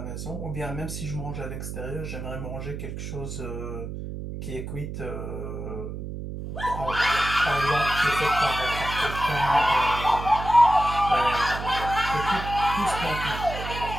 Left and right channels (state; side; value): noise; right; hum, 7 dB below the sound